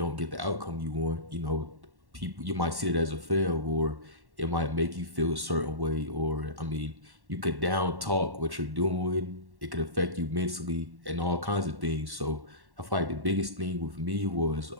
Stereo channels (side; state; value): left; late; 1.1 ms